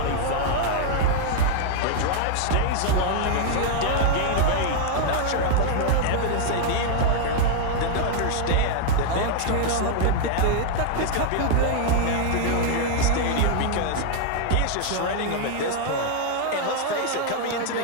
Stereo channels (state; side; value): different; both; correlation -0.01